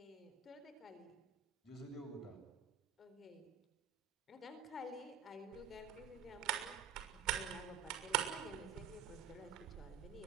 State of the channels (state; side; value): quieter; left; 7.6 dB